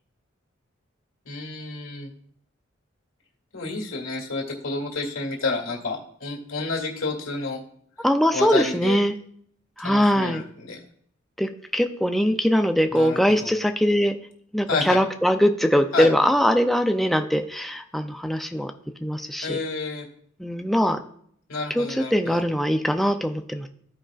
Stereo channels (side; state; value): both; normal; correlation 0.83